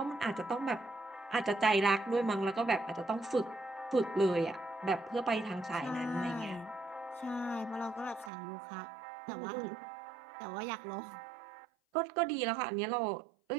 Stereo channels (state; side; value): drops out; left; at 8.3 s